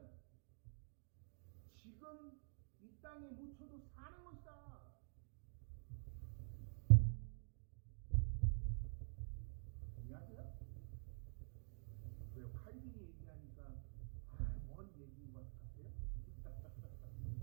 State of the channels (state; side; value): silent; left; digital silence